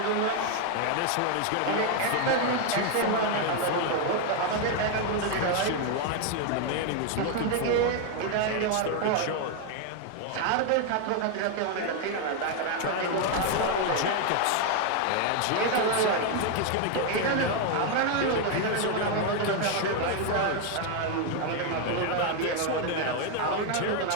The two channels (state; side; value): different; both; correlation 0.01